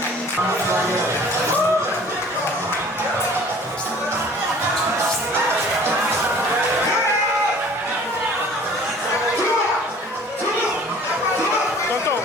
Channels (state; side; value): normal; both; correlation 0.49